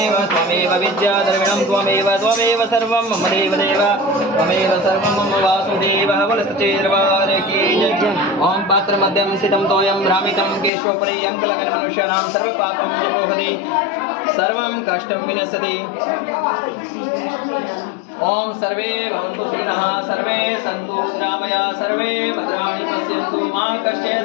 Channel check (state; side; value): drops out; right; at 10.7 s